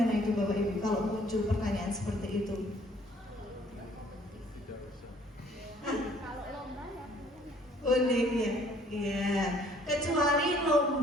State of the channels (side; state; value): both; normal; correlation 0.59